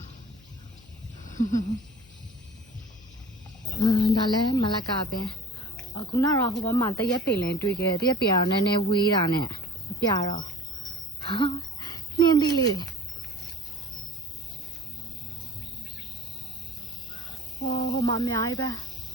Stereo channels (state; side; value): noise; left; hum, 25 dB below the sound